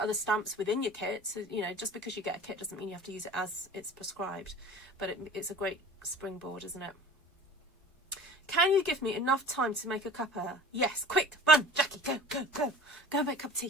stamps within your kit. So, you know, just because you get a kit doesn't mean you have to use it as it's prescribed, but it's a great springboard, isn't it? Can you give me enough time to make a cuppa? Yes, quick, run, Jackie, go and make a cup of tea,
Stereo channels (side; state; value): both; normal; correlation 0.42